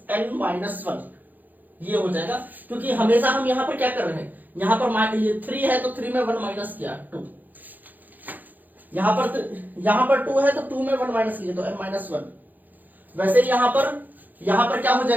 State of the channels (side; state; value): left; late; 0.084 ms